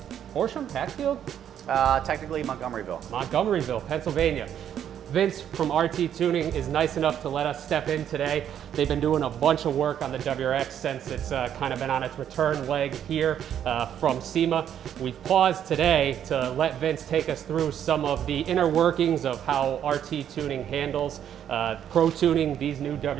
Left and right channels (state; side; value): quieter; left; 9.7 dB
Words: Horsham, Hatfield? Technically Montgomeryville, Pennsylvania. Vince from RT Tuning is nice enough to let us step in today. They've been doing a bunch of work on the WRX since it's kind of been on its return leg here from SEMA. We've paused today to let Vince take us through some of the inner workings of how RT Tuning handles pro tuning these new